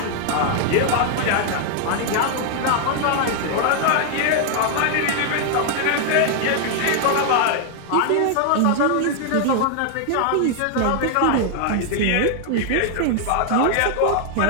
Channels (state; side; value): different; both; correlation 0.00